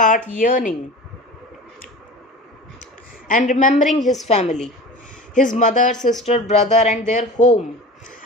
yearning and remembering his family, his mother, sister, brother, and their home.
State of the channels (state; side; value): normal; both; correlation 0.36